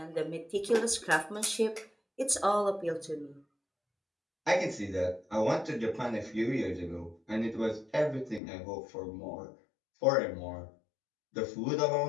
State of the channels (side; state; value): right; drops out; at 8.4 s